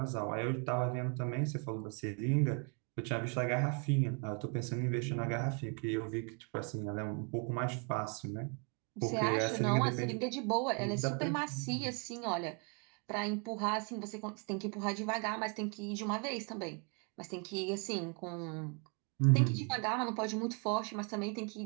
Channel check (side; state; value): left; quieter; 36.2 dB